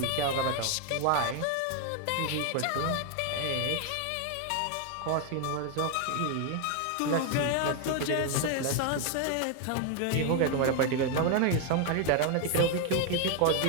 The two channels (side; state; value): both; different; correlation 0.01